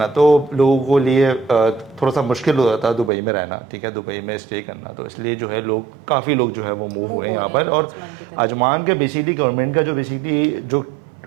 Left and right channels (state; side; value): drops out; left; at 3.1 s